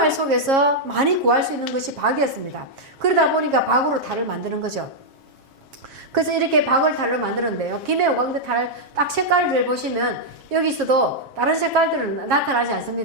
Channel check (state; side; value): late; left; 7.4 ms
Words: 속에서 많이 구할 수 있는 것이 박이었습니다. 그러다 보니까 박으로 탈을 만드는 거죠. 그래서 이렇게 박을 탈로 만들었는데요. 김해 오광대 탈 딱 색깔을 보시면 여기서도 다른 색깔들은 나타나지